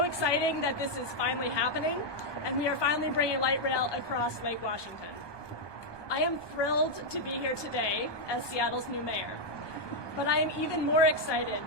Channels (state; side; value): late; right; 1.2 ms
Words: exciting that this is finally happening, and we are finally bringing light rail across Lake Washington. I am thrilled to be here today as Seattle's new mayor. But I am even more excited